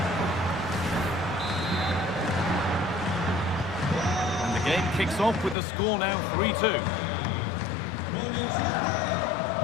And the game kicks off with the score now 3-2.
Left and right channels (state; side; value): drops out; right; at 5.6 s